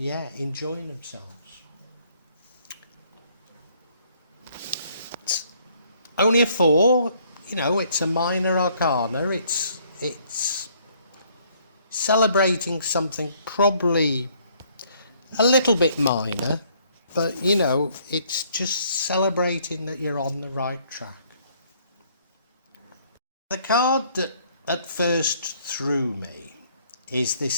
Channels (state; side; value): inverted; both; correlation -0.65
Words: enjoying themselves. It's only a 4. You know, it's a minor arcana. It's celebrating something probably a little bit minor, but you know, it's just celebrating that you're on the right track. The card that at first threw me is